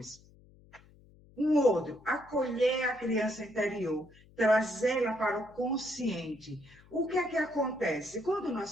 Um outro, acolher a criança interior, trazê-la para o consciente. O que é que acontece? Quando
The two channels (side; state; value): left; noise; hum, 26 dB below the sound